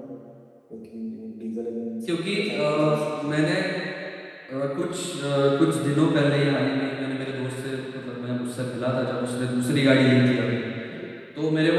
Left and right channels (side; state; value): both; identical; correlation 1.00